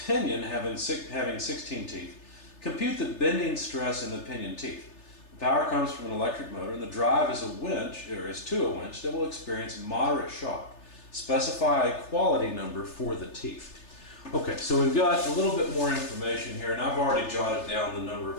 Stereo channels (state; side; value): late; right; 3.3 ms